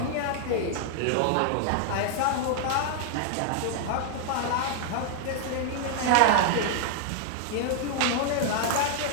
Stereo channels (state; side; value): different; both; correlation 0.00